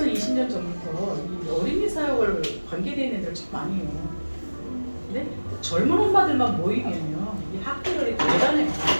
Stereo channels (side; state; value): both; inverted; correlation -1.00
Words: 20년 전부터 이 어린이 사역을 관계되어 있는 애들 참 많이 해요. 근데 젊은 엄마들만 모이면요 이 학교들이 대단해요.